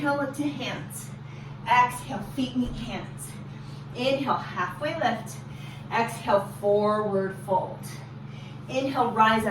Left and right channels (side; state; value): both; identical; correlation 1.00